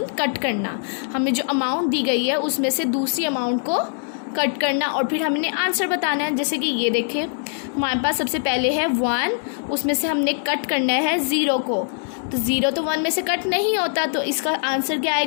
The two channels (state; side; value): silent; right; 64 dB below the other